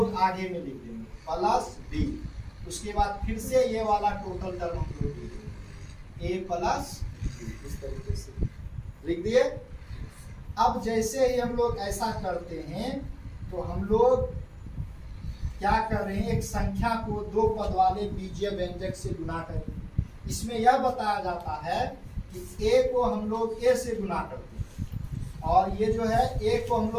आगे में लिख देंगे, प्लस बी। उसके बाद फिर से ये वाला टोटल टर्म हम लोग लिख देंगे, ए प्लस बी। इस तरीके से लिख दिए। अब जैसे ही हम लोग ऐसा करते हैं तो हम लोग क्या कर रहे हैं, एक संख्या को दो पद वाले बीजीय व्यंजक से गुना करें। इसमें यह बताया जाता है कि ए को हम लोग ए से गुना करते हैं और ये जो है ए को हम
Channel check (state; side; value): identical; both; correlation 1.00